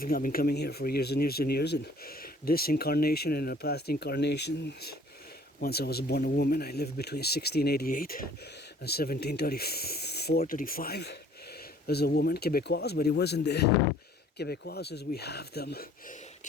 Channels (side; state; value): both; normal; correlation 0.56